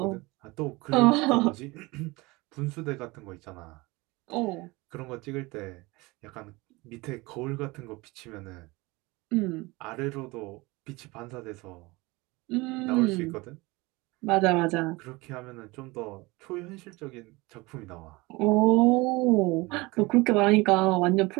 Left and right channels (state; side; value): quieter; left; 23.3 dB